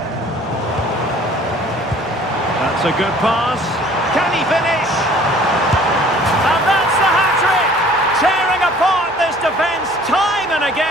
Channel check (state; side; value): normal; both; correlation 0.52